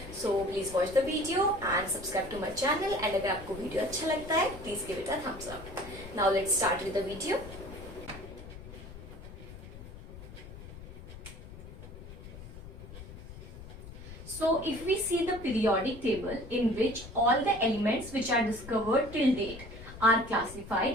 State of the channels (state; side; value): noise; left; rumble, 14 dB below the sound